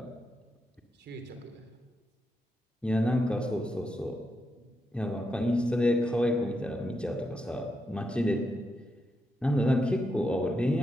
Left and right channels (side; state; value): both; normal; correlation 0.84